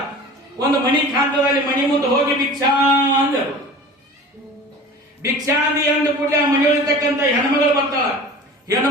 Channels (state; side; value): normal; both; correlation 0.39